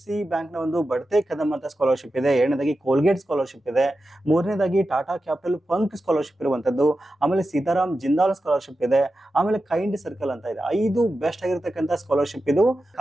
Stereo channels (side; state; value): both; normal; correlation 0.91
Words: ಬ್ಯಾಂಕ್ ನ ಒಂದು ಬಡ್ತೆ ಕದಂ ಅಂತ ಸ್ಕಾಲರ್ಶಿಪ್ ಇದೆ. ಎರಡನೇದಾಗಿ ಕೋಲ್ಗೇಟ್ ಸ್ಕಾಲರ್ಶಿಪ್ ಇದೆ. ಮೂರನೇದಾಗಿ ಟಾಟಾ ಕ್ಯಾಪಿಟಲ್ ಪಂಕ್ ಸ್ಕಾಲರ್ಶಿಪ್ ಇರುವಂತದ್ದು. ಆಮೇಲೆ ಸೀತಾರಾಮ್ ಜಿಂದಾಲ್ ಸ್ಕಾಲರ್ಶಿಪ್ ಇದೆ. ಆಮೇಲೆ ಕೈಂಡ್ ಸರ್ಕಲ್ ಅಂತ ಇದೆ. 5 ಬೆಸ್ಟ್ ಆಗಿರ್ತಕ್ಕಂಥ ಸ್ಕಾಲರ್ಶಿಪ್ ಇದು.